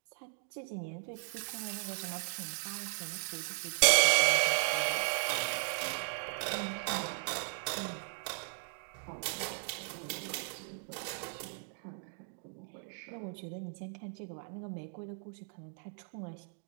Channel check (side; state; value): left; silent; 54 dB below the other